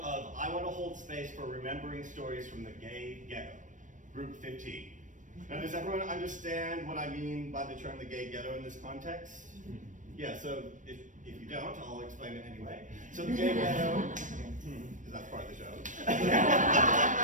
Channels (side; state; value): left; late; 0.37 ms